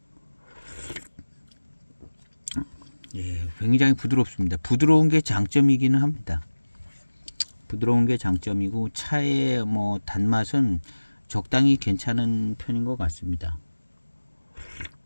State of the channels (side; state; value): both; inverted; correlation -1.00